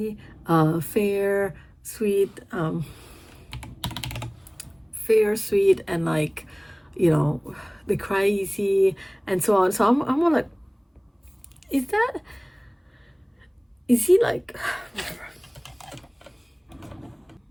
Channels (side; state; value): both; identical; correlation 1.00